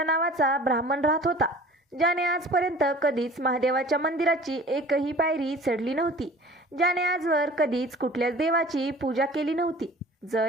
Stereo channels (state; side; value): normal; both; correlation 0.45